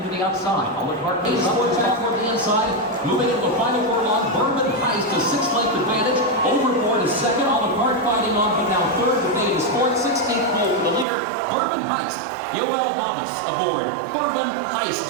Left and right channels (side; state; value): left; drops out; at 11.1 s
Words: to the outside. Olive Park is towards back toward the inside. Moving into the final furlong. Bourbon Heist to 6-length advantage. Overboard is second. Olive Park fighting on, but now third. Debate is fourth. 16th pole for the leader. Bourbon Heist. Yoel Novice aboard. Bourbon Heist